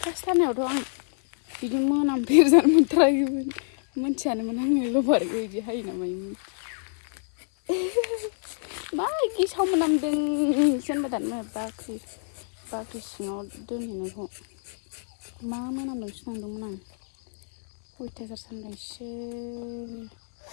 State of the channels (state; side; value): silent; right; 60 dB below the other